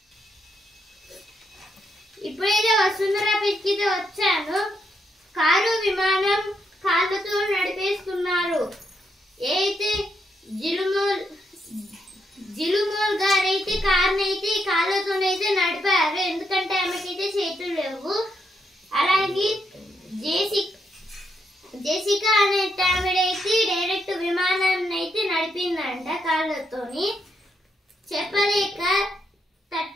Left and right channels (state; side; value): normal; both; correlation 0.79